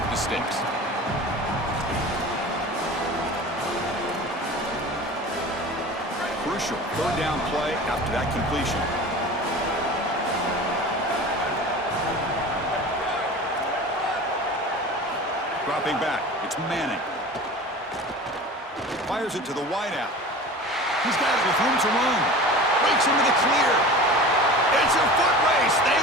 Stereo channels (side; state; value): both; normal; correlation 0.36